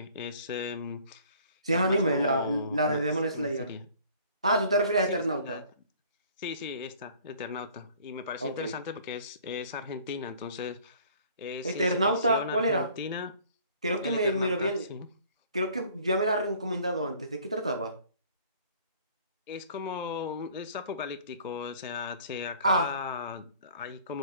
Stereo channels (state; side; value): inverted; both; correlation -0.53